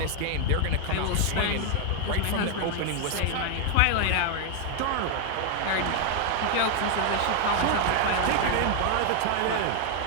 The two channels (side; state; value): both; different; correlation 0.00